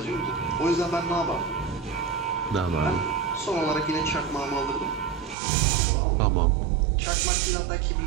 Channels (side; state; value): left; drops out; at 5.4 s